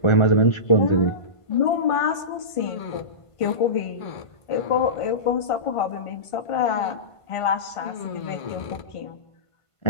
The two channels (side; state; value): right; late; 1.5 ms